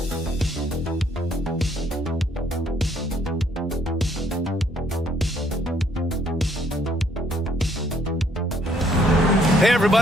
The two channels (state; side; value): normal; both; correlation 0.66